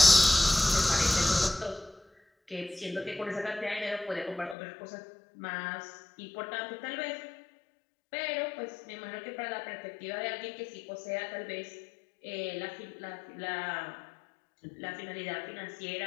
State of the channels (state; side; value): drops out; right; at 4.5 s